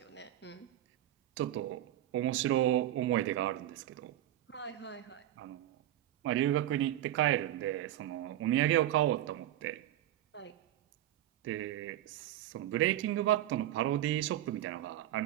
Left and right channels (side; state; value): left; quieter; 13.1 dB